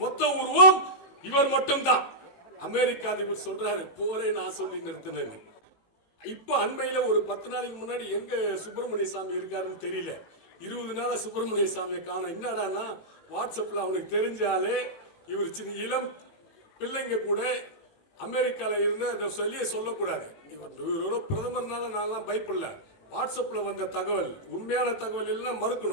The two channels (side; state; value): right; late; 18 ms